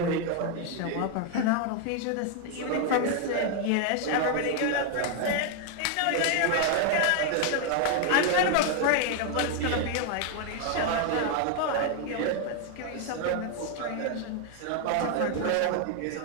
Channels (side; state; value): both; different; correlation 0.01